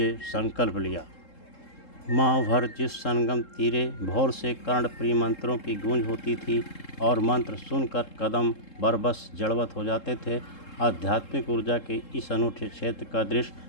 संकल्प लिया। माह भर जिस संगम तीरे भोर से कर्णप्रिय मंत्रों की गूंज होती थी और मंत्र सुनकर कदम बरबस जड़वत हो जाते थे, आध्यात्मिक ऊर्जा के इस अनूठे क्षेत्र का दृश्य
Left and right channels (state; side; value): late; right; 3.7 ms